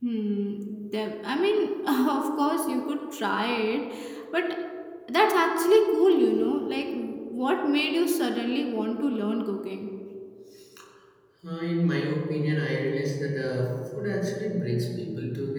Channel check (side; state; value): both; identical; correlation 1.00